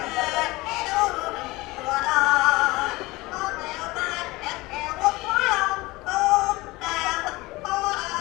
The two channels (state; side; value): quieter; right; 21.2 dB